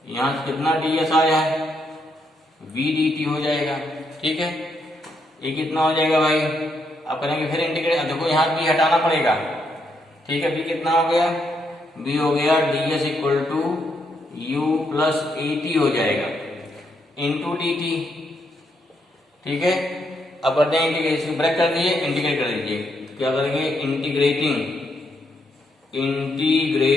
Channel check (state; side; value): normal; both; correlation 0.77